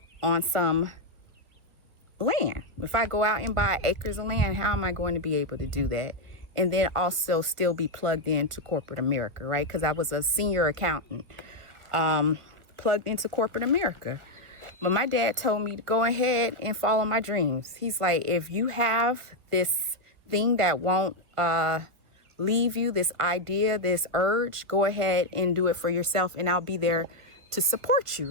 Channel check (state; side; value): late; left; 1.5 ms